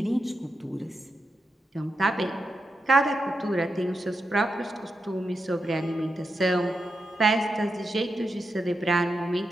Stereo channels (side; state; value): both; normal; correlation 0.87